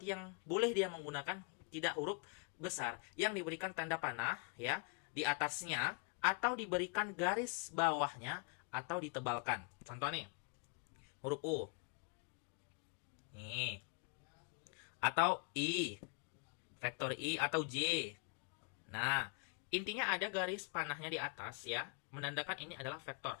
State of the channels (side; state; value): right; quieter; 38.3 dB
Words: yang boleh dia menggunakan tidak huruf besar, yang diberikan tanda panah ya di atasnya atau diberikan garis bawahnya atau ditebalkan. Contoh nih. Huruf U. Nih. Atau I. Vektor I atau J. Nah, intinya ada garis panahnya di atas ya, menandakan ini adalah vektor.